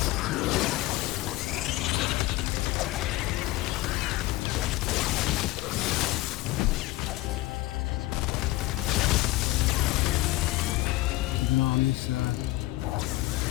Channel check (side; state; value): right; quieter; 18.7 dB